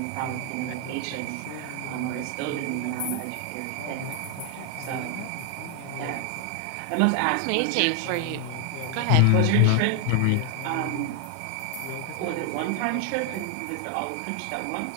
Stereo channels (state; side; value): different; both; correlation 0.00